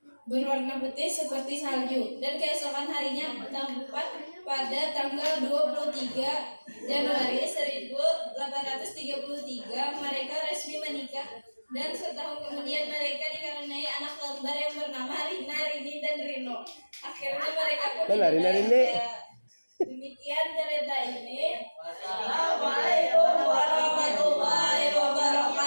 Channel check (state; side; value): inverted; both; correlation -1.00